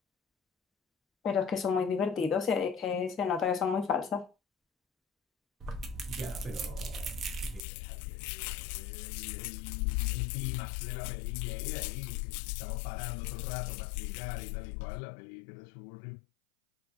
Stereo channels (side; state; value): right; drops out; at 7.6 s